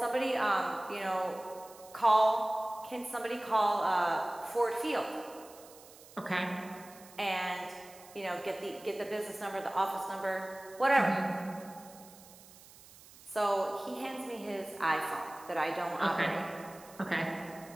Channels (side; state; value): right; noise; hiss, 21 dB below the sound